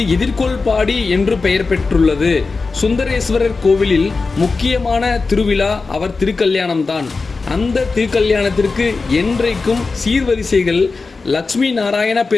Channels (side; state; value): right; quieter; 4.1 dB